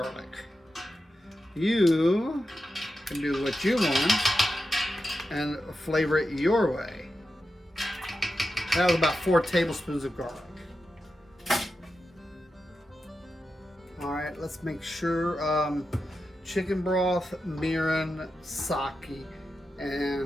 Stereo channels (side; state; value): both; normal; correlation 0.90